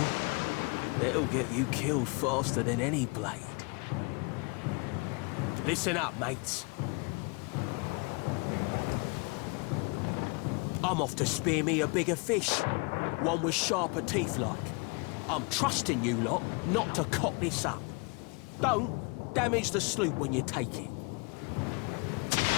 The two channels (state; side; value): quieter; right; 30.9 dB